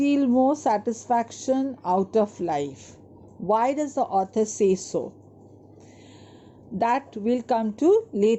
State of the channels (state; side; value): identical; both; correlation 1.00